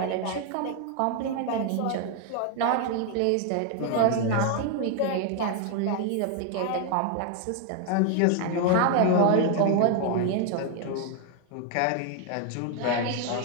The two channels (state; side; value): different; both; correlation 0.00